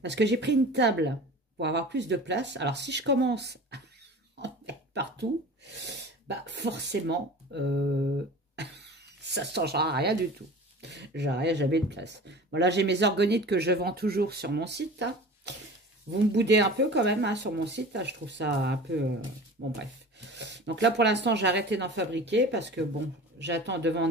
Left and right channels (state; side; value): normal; both; correlation 0.38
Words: Parce que j'ai pris une table pour avoir plus de place. Alors, si je commence à en mettre partout, forcément, ça ne changera rien du tout. J'aurai jamais de place. Bon, là, j'ai mes orgonites que je vends toujours sur mon site. Hein. Vous me boudez un peu quand même hein, sur mon site. Là, je trouve ça un peu... bon, bref. Donc là, pour l'instant, j'ai arrêté d'en fabriquer parce que, bon, j'attends de